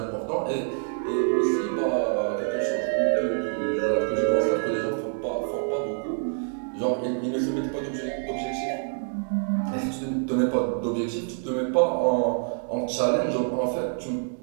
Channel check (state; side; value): silent; left; digital silence